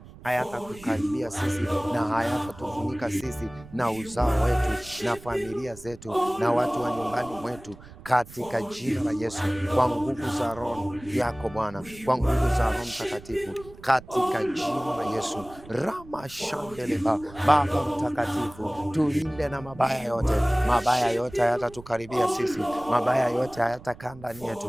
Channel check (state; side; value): noise; right; rumble, 19 dB below the sound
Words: hayatatukaribia sisi na hayatatufunika sisi na uzao wetu na familia zetu na watu wa nyumbani mwetu, katika jina la Yesu. Kwa nguvu za Roho yako Bwana, kwa nguvu za Roho Mtakatifu, katika jina la Yesu. Rama shandeleba. Baba Mtakatifu, tulinde na mabaya yote. Mabaya yote hayatatukaribia sisi, mabaya yote hayatakaa ndani